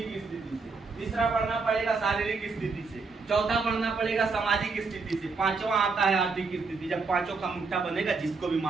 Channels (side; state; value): left; quieter; 4.3 dB